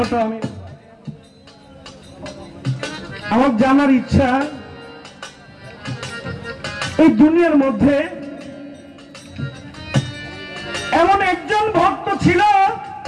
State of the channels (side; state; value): both; identical; correlation 1.00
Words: আমার জানার ইচ্ছা, এই দুনিয়ার মধ্যে এমন একজন ভক্ত ছিল,